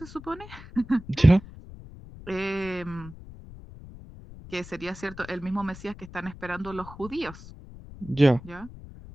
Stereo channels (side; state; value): left; noise; rumble, 16 dB below the sound